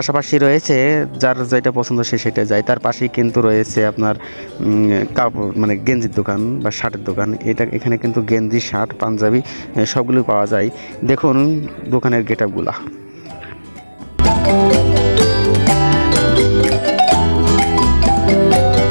রয়েছে, যার যেটা পছন্দ সে সেটা যায়। তার পাশেই কিন্তু রয়েছে আপনার কাপড় গেঞ্জির দোকান বা শার্টের দোকান। এখানে কিন্তু গেঞ্জি, শার্ট, পাঞ্জাবি সবগুলো পাওয়া যায়। দেখুন দোকানের গেটআপগুলা।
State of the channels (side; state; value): both; inverted; correlation -1.00